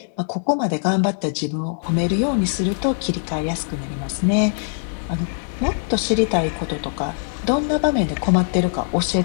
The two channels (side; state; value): right; silent; 64 dB below the other